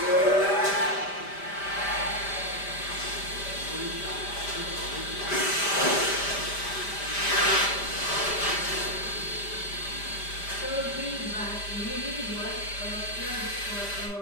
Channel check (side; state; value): right; late; 5.1 ms